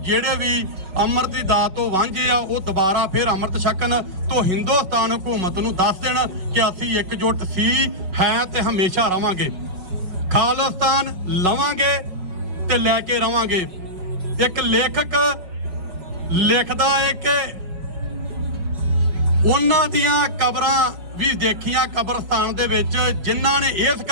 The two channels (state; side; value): late; left; 5.5 ms